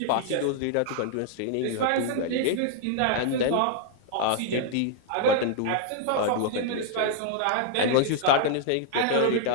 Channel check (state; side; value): different; both; correlation -0.01